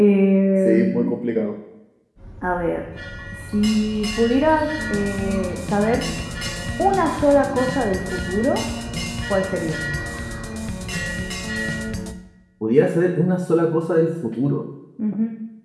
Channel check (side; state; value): both; identical; correlation 1.00